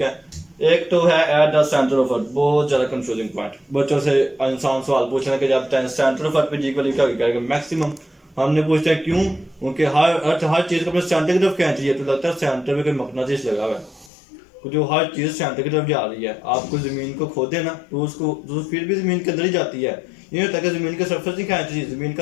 है। एक तो है at the centre of earth, बहुत ज़्यादा कंफ्यूजिंग पॉइंट, बच्चों से इंसान सवाल पूछना कि जब सेंटर ऑफ अर्थ पे जी की वैल्यू क्या करेगा, मैक्सिमम। हमने पूछते हैं क्यों, क्योंकि हर चीज़ को अपने सेंटर की तरफ खींच रही है, तो लगता है सेंटर में कोई मकनातीस लगा हुआ है, जो हर चीज़ सेंटर की तरफ जा रही है। आपको ज़मीन को खोदे ना तो उसको तो फिर भी ज़मीन के अंदर ही जाती है, ये होता है कि ज़मीन के सरफेस नहीं खींच रही, ज़मीन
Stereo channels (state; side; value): drops out; right; at 14.1 s